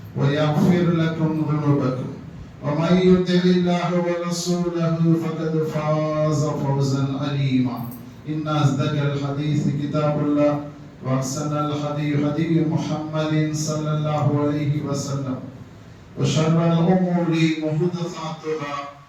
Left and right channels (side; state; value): both; identical; correlation 1.00